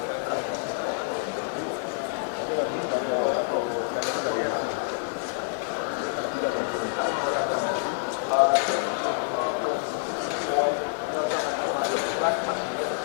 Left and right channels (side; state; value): right; silent; digital silence